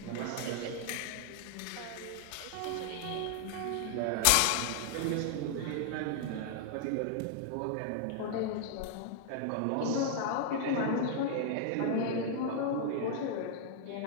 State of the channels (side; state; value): both; different; correlation 0.00